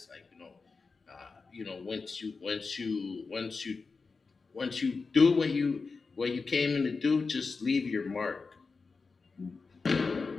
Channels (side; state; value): right; quieter; 4.4 dB